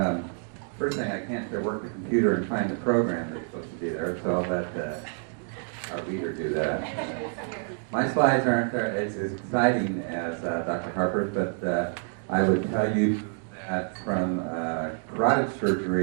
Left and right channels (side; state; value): left; silent; 55 dB below the other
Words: First thing, I can't work the computer and find the program that's supposed to be there, so I'll let our reader do that. My slides aren't as exciting as Dr. Harper's, but I would tell you that from carotid